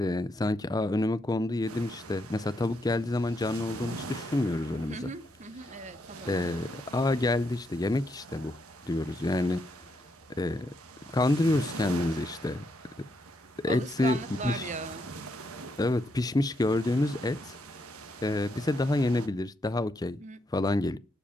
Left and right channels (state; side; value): normal; both; correlation 0.78